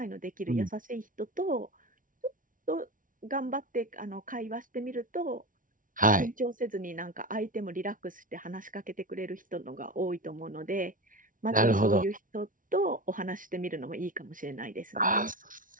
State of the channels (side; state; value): left; late; 0.39 ms